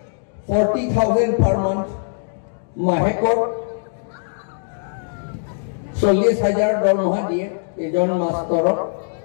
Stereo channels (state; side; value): silent; right; digital silence